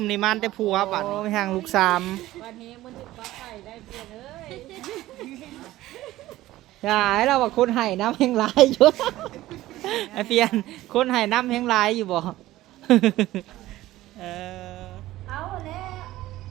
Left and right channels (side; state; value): left; quieter; 16.0 dB